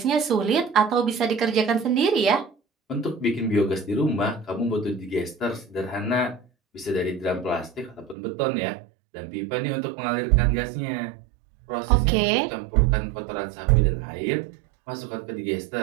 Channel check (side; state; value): left; drops out; at 8.2 s